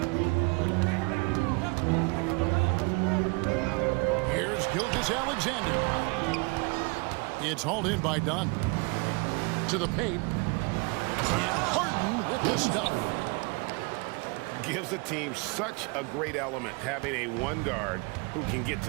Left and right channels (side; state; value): left; quieter; 29.6 dB